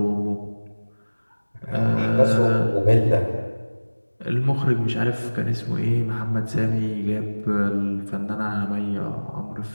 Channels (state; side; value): inverted; both; correlation -1.00